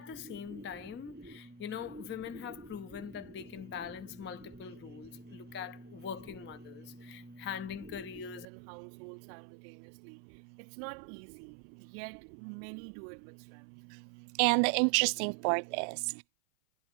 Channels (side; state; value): left; drops out; at 8.5 s